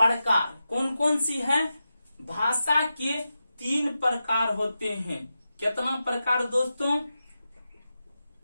कौन कौन सी है? भाषा के 3 प्रकार होते हैं। कितना प्रकार दोस्तों?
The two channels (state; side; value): inverted; both; correlation -0.91